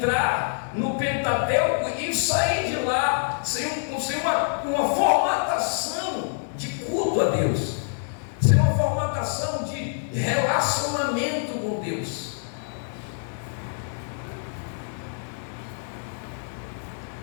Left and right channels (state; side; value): silent; right; digital silence